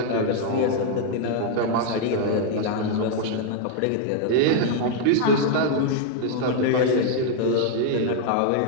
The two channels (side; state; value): both; different; correlation 0.00